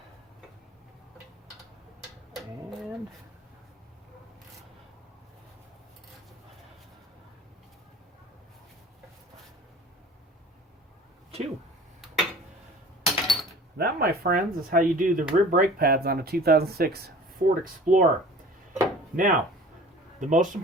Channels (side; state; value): both; normal; correlation 0.44